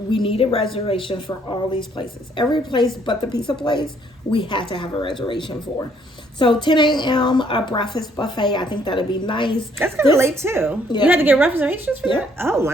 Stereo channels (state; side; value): normal; both; correlation 0.66